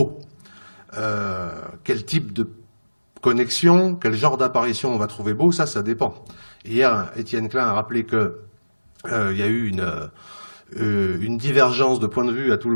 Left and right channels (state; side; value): inverted; both; correlation -1.00